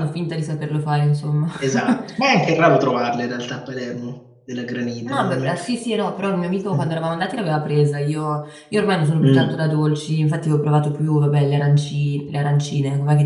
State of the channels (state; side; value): identical; both; correlation 1.00